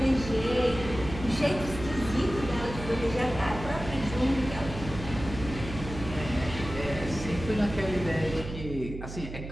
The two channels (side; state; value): right; noise; hum, 10 dB below the sound